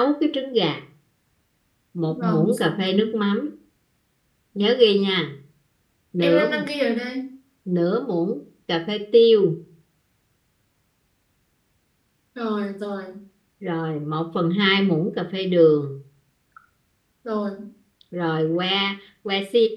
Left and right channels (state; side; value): identical; both; correlation 1.00